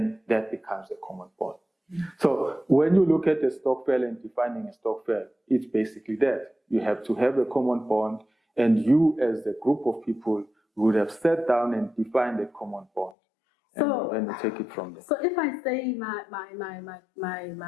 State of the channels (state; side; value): drops out; right; at 13.2 s